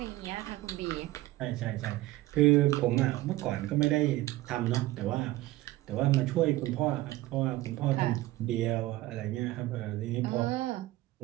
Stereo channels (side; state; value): left; quieter; 17.1 dB